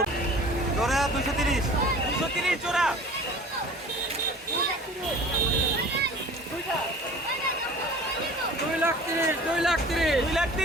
জোড়া 230 জোড়া।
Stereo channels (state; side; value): normal; both; correlation 0.44